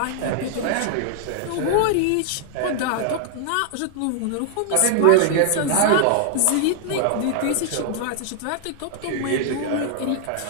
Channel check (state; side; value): different; both; correlation 0.00